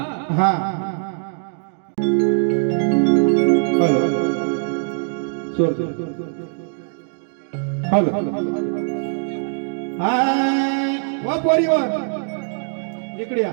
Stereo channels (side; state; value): left; silent; 65 dB below the other